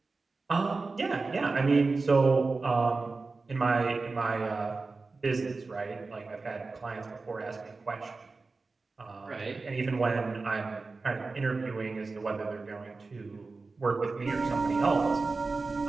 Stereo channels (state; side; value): quieter; left; 3.9 dB